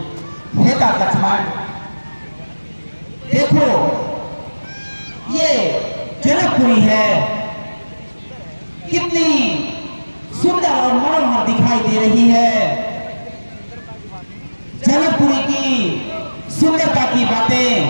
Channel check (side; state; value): both; inverted; correlation -1.00